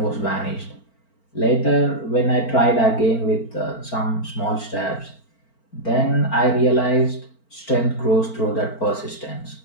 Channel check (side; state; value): right; late; 4.4 ms